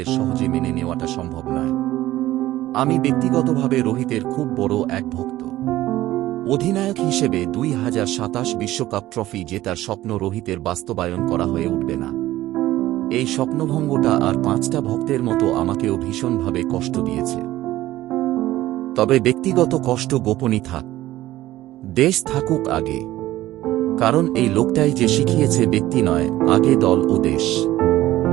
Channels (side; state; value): left; quieter; 15.5 dB